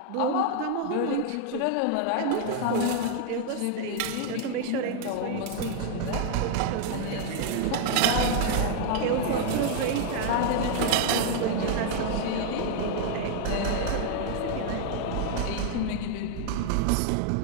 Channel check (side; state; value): both; different; correlation 0.00